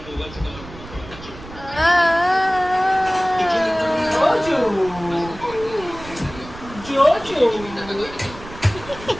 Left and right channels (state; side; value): noise; right; rumble, 16 dB below the sound